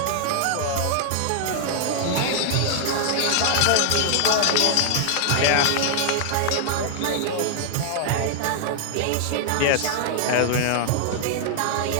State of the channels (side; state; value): both; different; correlation 0.00